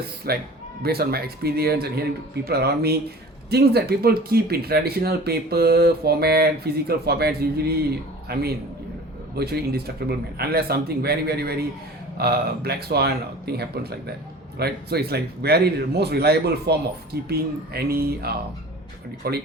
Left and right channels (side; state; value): both; normal; correlation 0.42